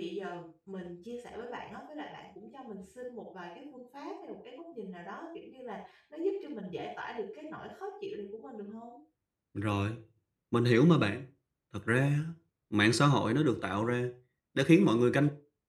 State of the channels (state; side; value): identical; both; correlation 1.00